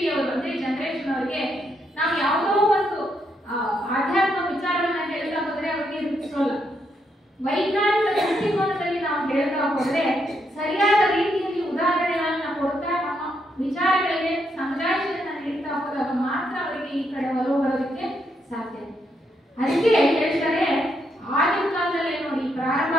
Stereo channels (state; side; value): normal; both; correlation 0.78